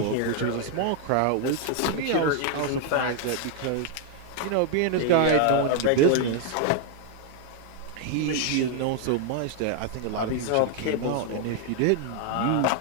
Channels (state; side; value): different; both; correlation 0.00